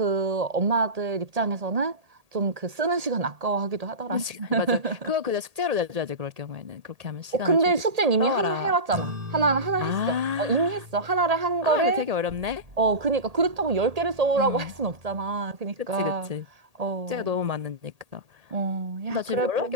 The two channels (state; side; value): late; left; 1.8 ms